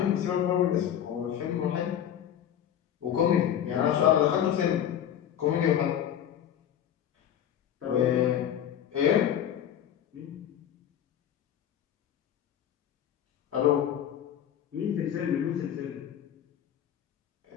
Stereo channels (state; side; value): quieter; right; 10.1 dB